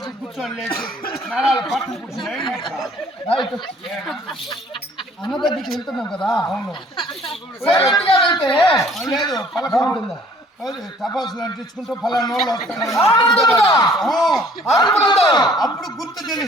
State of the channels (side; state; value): both; normal; correlation 0.57